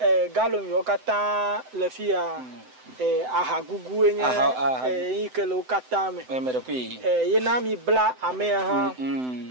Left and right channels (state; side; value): late; left; 7.9 ms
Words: galom yo kata le fia ahagugu enye ikele ukata me mere kwi yena mi bla ame ha